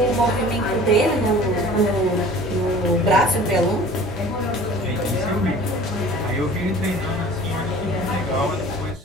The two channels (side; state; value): both; normal; correlation 0.45